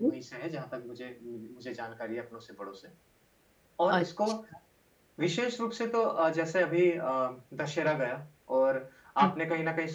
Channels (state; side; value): identical; both; correlation 1.00